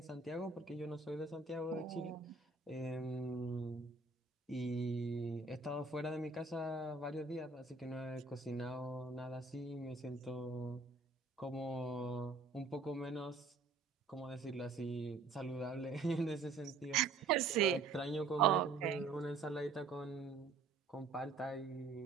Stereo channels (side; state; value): left; quieter; 4.0 dB